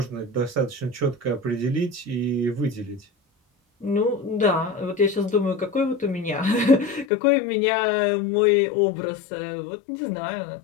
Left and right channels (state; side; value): drops out; right; at 7.1 s